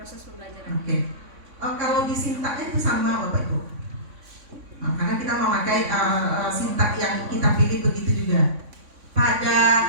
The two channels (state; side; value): late; left; 3.6 ms